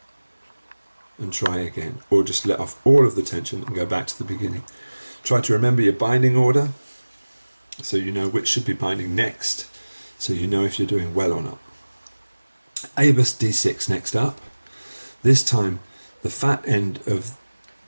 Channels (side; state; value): both; inverted; correlation -1.00